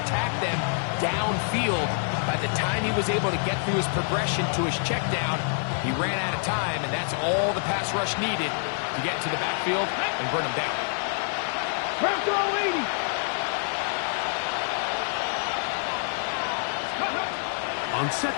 attack them downfield. By the time he was able to get through his progression to his check down, he ran out of time, and that's all the pass rush needed to get to the backfield and burn him down. Press all 80. On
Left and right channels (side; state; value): right; silent; 60 dB below the other